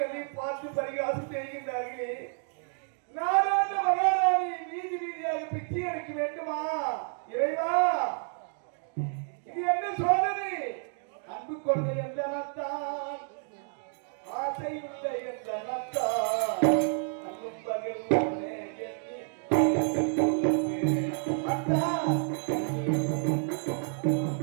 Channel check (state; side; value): silent; left; 56 dB below the other